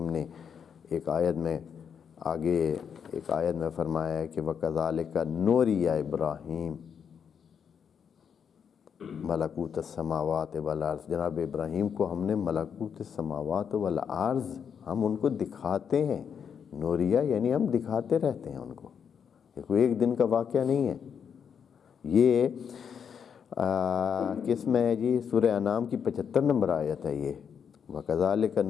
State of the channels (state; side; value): quieter; right; 7.3 dB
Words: نے ایک آیت میں فرمایا ہے کہ وَكَذَلِكَ نُورِيَ ابراہیم ملکوت السماوات والارض، جناب ابراہیم کو ہم نے ملکوت السماوات والارض، ہم ان کو دکھاتے ہیں۔ نوریہ یعنی ہم دکھاتے رہتے ہیں ان کو، یہ کوئی ایک دن کا واقعہ نہیں ہے۔ یہ کس میں ہے جی؟ سورہ انعام کی 75 نمبر آیت ہے یہ، وَكَذَلِكَ